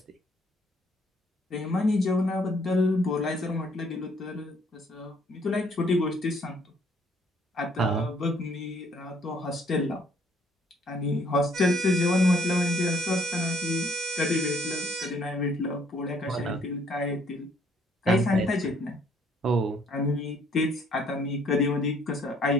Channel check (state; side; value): normal; both; correlation 0.64